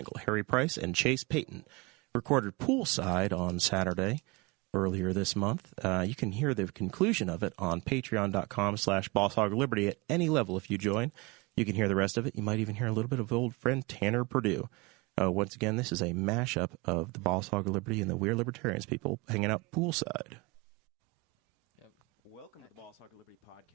Harry Price, and Chase Payton. Recorded Poolside on Saturday earlier this month. You can hear the conclusion of it on patreon.com/BossHogLiberty at any level if you join. You can hear the rest of it. You might even hear a little bit of old friend Tanner Purdue. Once again, this is a mashup of the Boss Hog of Liberty and the We're Libertarians people hanging out poolside. Yep. Welcome to the Boss Hog of Liberty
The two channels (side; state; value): left; quieter; 25.4 dB